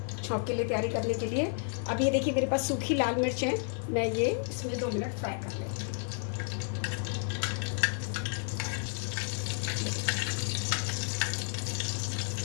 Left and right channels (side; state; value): right; silent; 57 dB below the other